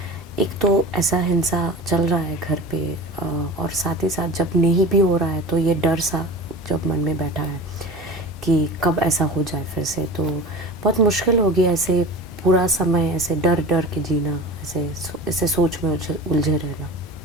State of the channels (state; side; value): normal; both; correlation 0.34